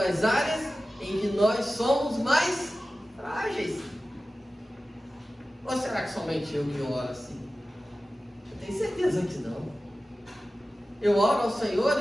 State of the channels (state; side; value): normal; both; correlation 0.95